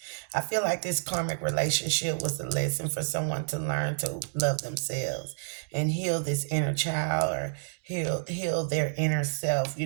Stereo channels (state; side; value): silent; left; digital silence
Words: I feel like this karmic relationship was a lesson for someone to learn to love themselves and heal this inner child, or heal their inner self,